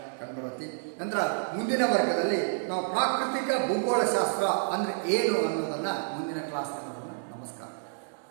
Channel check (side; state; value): left; silent; digital silence